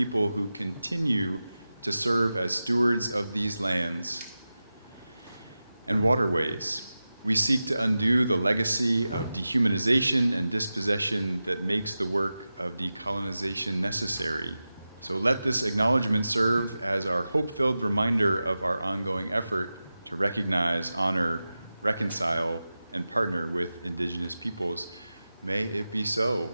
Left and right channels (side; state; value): both; inverted; correlation -0.94